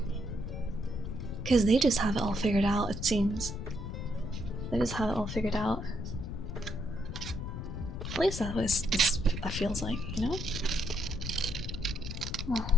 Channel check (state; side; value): noise; left; rumble, 6 dB below the sound